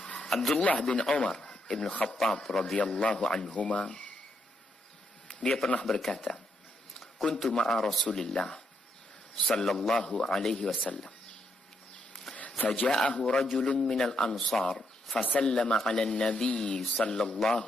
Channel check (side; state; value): both; normal; correlation 0.78